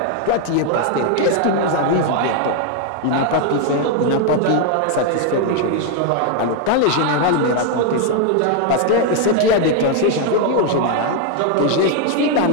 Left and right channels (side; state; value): both; different; correlation 0.00